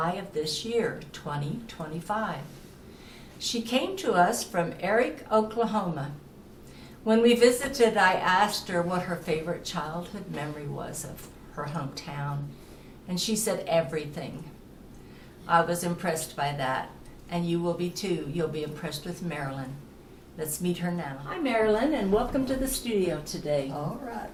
of this year, 2025. She came to us from Eric, Oklahoma. When we visited, I asked her what her favorite childhood memory was of her hometown, and she said everything. I was impressed by that, and you will be too. You'll be impressed with Marilyn. Let's meet her now. Hi, Marilyn, and welcome to the studio today. All right,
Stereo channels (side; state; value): both; identical; correlation 1.00